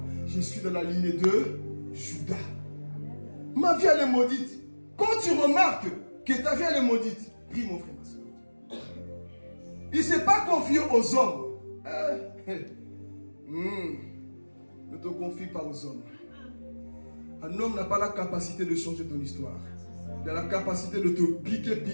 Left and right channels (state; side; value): inverted; both; correlation -1.00